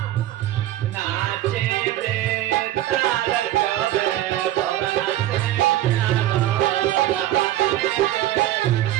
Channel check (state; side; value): quieter; left; 13.9 dB